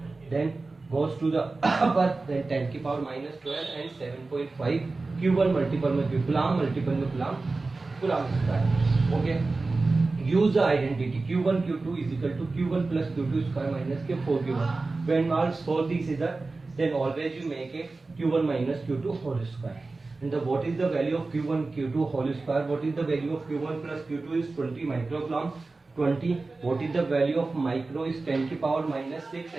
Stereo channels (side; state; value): left; quieter; 3.6 dB